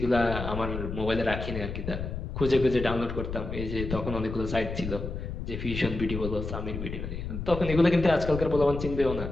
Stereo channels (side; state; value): left; noise; rumble, 6 dB below the sound